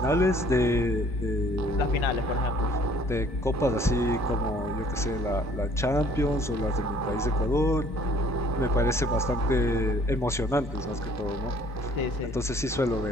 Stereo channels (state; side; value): normal; both; correlation 0.57